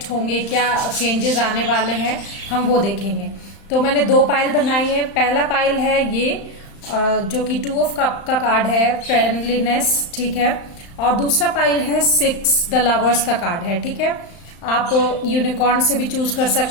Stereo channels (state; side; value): late; right; 35 ms